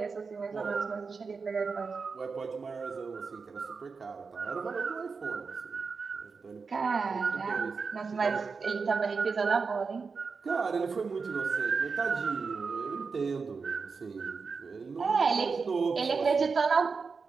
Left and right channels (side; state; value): left; quieter; 4.9 dB